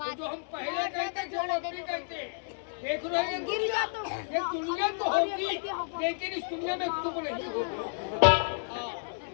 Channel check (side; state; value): right; silent; 57 dB below the other